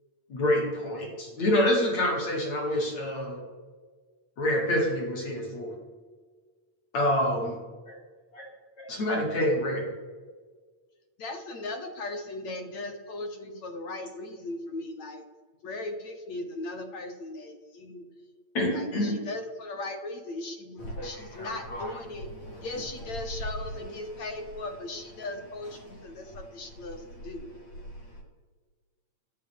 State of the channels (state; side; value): late; right; 8.8 ms